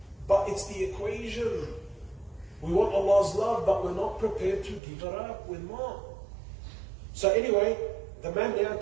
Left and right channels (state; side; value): drops out; left; at 4.8 s